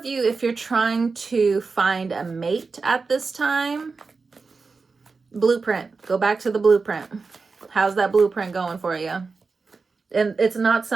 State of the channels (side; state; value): left; quieter; 4.4 dB